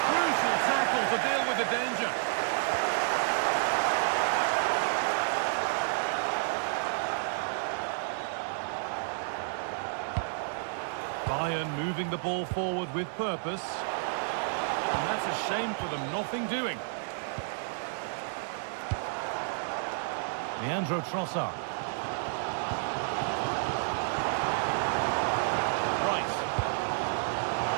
crucial tackle to deal with the danger. Bayern moving the ball forward with purpose. And that's a shame for them, nothing doing. Leandro Trossard. Rice.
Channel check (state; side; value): silent; left; 56 dB below the other